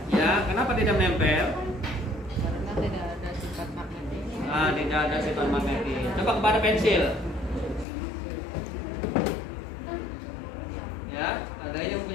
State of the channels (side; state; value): right; drops out; at 7.9 s